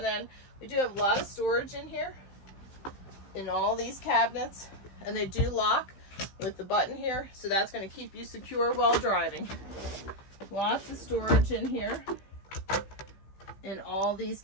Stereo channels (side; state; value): right; late; 15 ms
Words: then we do have a lot of storage in here, in all these cabinets, and they do lock with the button here, so that's going to keep you secure while driving. Lots of storage in here, in all these